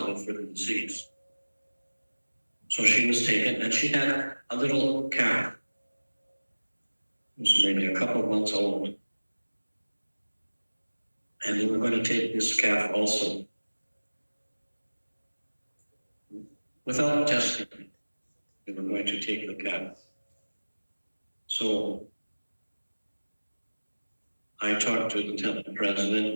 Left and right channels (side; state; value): both; inverted; correlation -1.00